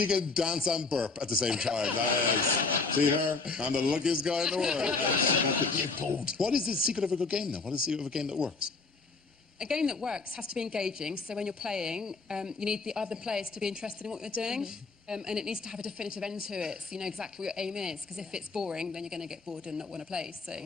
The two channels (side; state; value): right; quieter; 4.1 dB